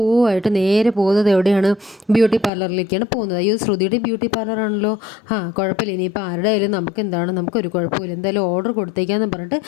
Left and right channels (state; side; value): drops out; right; at 2.5 s